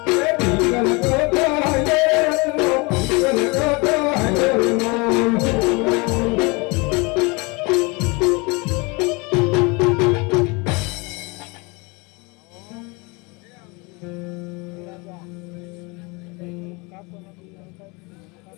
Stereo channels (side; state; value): right; quieter; 27.8 dB